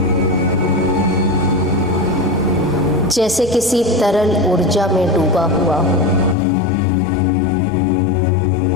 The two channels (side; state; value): right; drops out; at 6.4 s